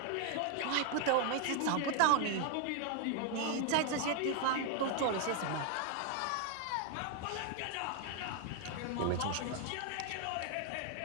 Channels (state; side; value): different; both; correlation 0.00